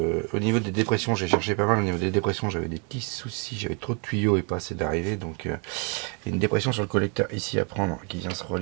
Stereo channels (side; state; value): left; quieter; 36.6 dB